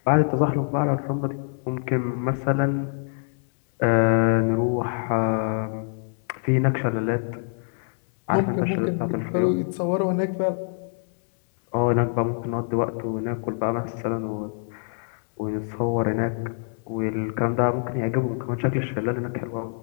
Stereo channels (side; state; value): right; silent; 61 dB below the other